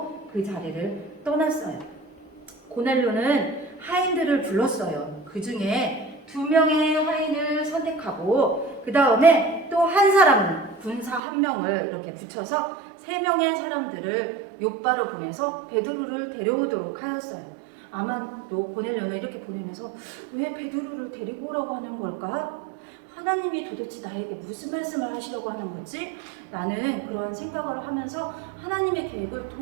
그 자리를 떠났어요. 고넬료는 하인들을 불렀어요. 그 중에 2명의 하인을 선택하고 그 다음에 또 한 사람은 군사 1명을 이렇게 붙여서 3명의 사람들을 요바로 보내서 베드로를 데려오도록 하였어요. 아마 또 고넬료는 이렇게 보내면서 왜 베드로를 데리고 오라고 하는 걸까? 하나님이 도대체 나에게 무슨 말씀을 하시려고 하는 거지? 라는 그런 생각을 하면서 하나님의 계획을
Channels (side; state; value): left; drops out; at 11.2 s